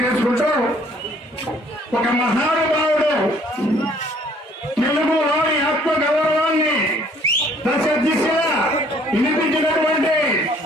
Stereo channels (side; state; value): both; normal; correlation 0.59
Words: ఒక మహానుభావుడు తెలుగులోని ఆత్మ గౌరవాన్ని దశ దిశగా వినిపించినటువంటి